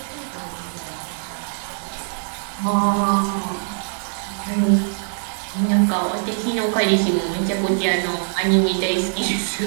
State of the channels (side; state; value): left; silent; digital silence